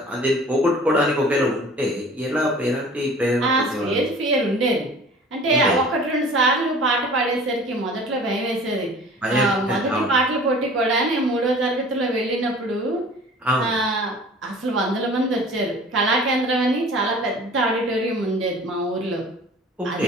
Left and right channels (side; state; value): both; normal; correlation 0.45